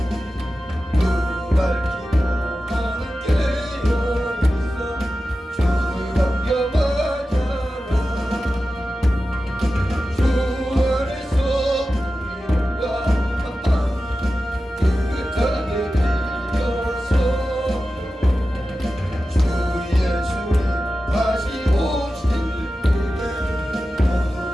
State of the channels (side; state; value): both; normal; correlation 0.93